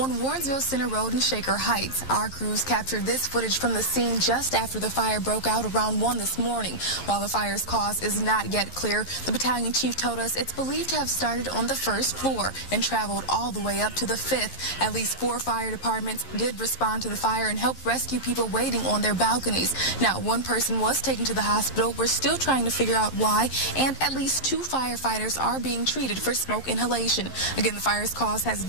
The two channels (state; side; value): late; right; 11 ms